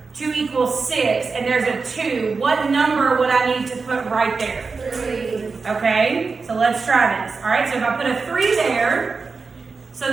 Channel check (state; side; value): quieter; left; 4.5 dB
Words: to equal 6 and there's a 2, what number would I need to put right there? 3. Okay, so let's try this. All right, so if I put a 3 there, so